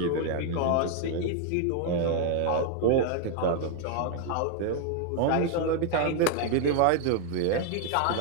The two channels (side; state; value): both; different; correlation 0.00